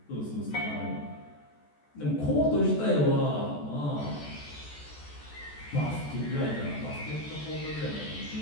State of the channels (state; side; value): late; right; 14 ms